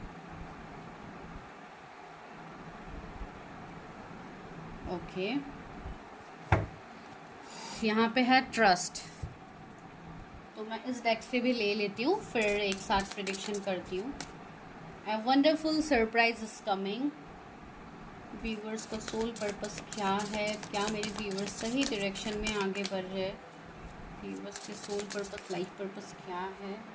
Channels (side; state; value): both; identical; correlation 1.00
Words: ओके, यहाँ पे है ट्रस्ट। तो मैं इस डेक से भी ले लेती हूँ, फिर एक साथ प्रेडिक्शन करती हूँ। A wonderful surprise is coming. Viewers का सोल पर्पस क्या है? क्या मेरे व्यूवर्स सही डायरेक्शन में आगे बढ़ रहे हैं? व्यूवर्स के सोल पर्पस, लाइफ पर्पस क्या है?